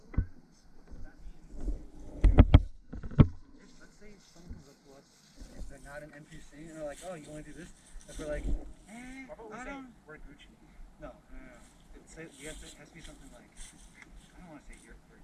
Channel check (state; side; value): identical; both; correlation 1.00